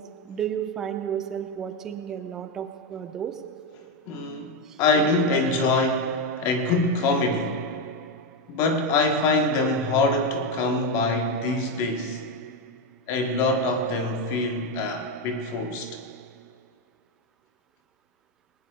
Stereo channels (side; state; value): both; normal; correlation 0.08